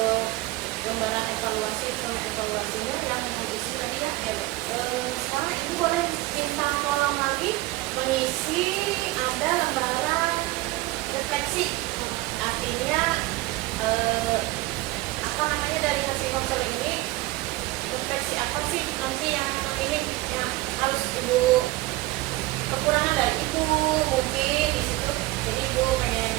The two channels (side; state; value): left; quieter; 19.1 dB